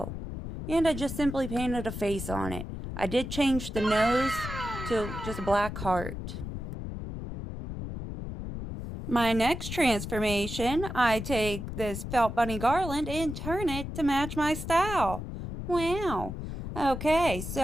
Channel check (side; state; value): left; noise; rumble, 7 dB below the sound